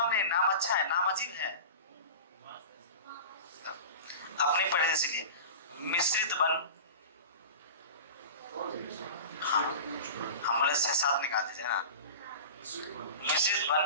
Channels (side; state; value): both; inverted; correlation -0.33